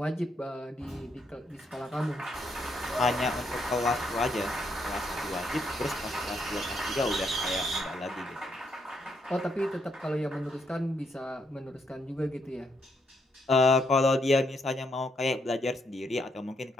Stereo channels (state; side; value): normal; both; correlation 0.76